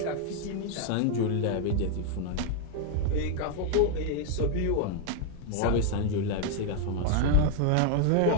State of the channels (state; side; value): different; both; correlation 0.00